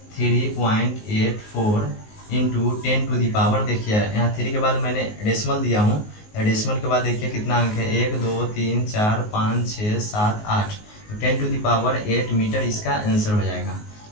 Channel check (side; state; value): right; late; 19 ms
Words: 3.84 इंटू 10⁻, देखिए यहाँ 3 के बाद मैंने डेसिमल दिया हूँ, डेसिमल के बाद देखिए कितना अंक है, 1 2 3 4 5 6 7 8, 10⁸ मीटर इसका आंसर हो जाएगा।